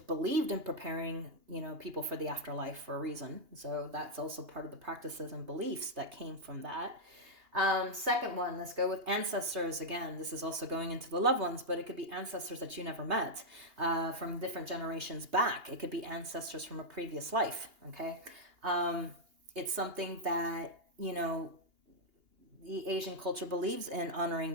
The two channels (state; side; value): late; left; 2.8 ms